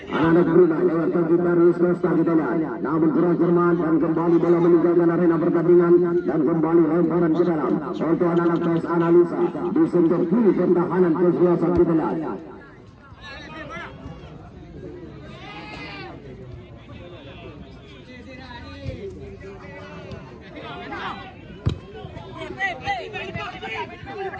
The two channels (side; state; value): both; identical; correlation 1.00